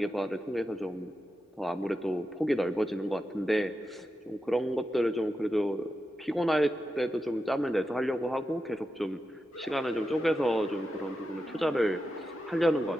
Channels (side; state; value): both; normal; correlation 0.89